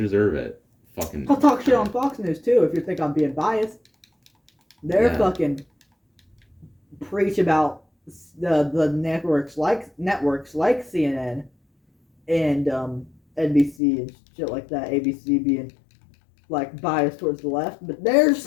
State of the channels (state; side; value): drops out; right; at 13.8 s